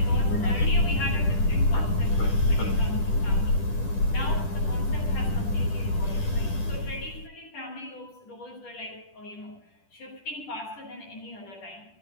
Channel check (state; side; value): late; right; 10 ms